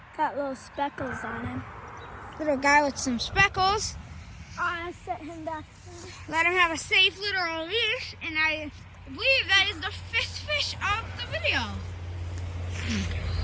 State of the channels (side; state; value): both; identical; correlation 1.00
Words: Got little speckles on him. Little guy with some speckles. I set him back. Let him have a safe little release, and I believe that is the fifth fish of the video.